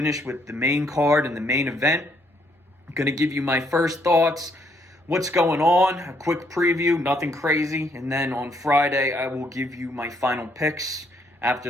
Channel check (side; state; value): both; normal; correlation 0.70